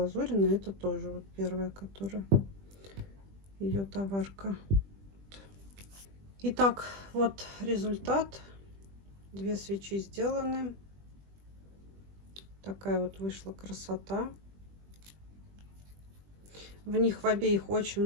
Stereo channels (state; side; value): late; left; 20 ms